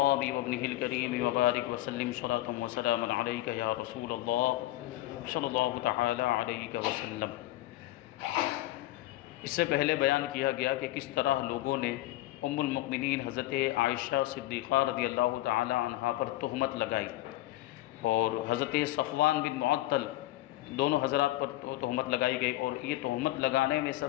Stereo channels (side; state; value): right; quieter; 16.8 dB